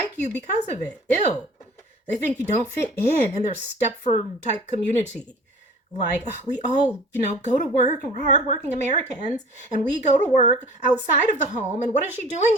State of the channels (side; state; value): both; normal; correlation 0.45